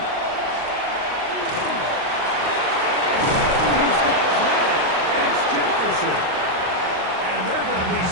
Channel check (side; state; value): left; late; 38 ms